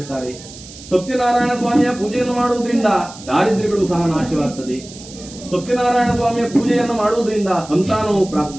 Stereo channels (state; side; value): noise; right; hiss, 17 dB below the sound